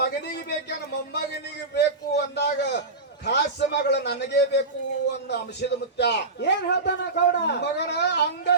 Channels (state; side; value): quieter; left; 3.3 dB